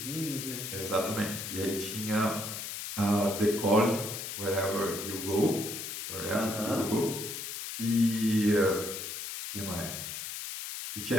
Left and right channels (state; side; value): noise; left; hiss, 6 dB below the sound